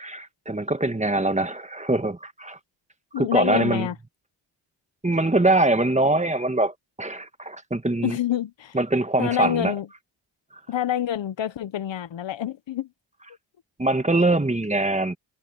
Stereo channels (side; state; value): both; normal; correlation 0.32